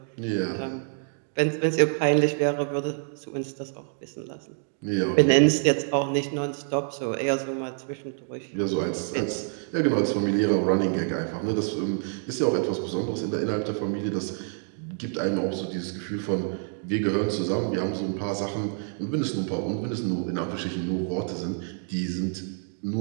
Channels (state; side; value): silent; left; 60 dB below the other